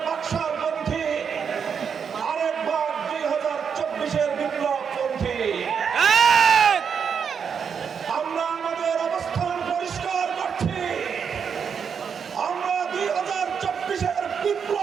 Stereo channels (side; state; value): left; quieter; 6.8 dB